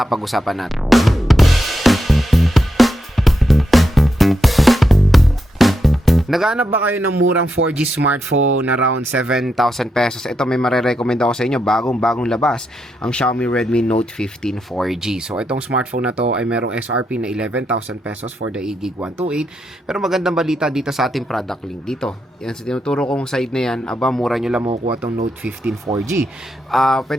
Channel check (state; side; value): normal; both; correlation 0.84